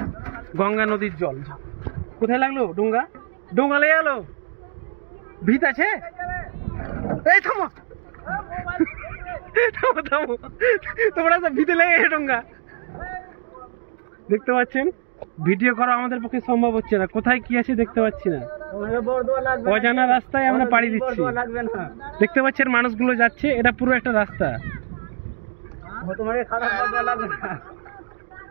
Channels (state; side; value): silent; left; digital silence